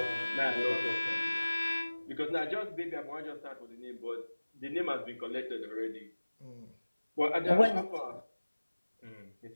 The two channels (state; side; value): inverted; both; correlation -1.00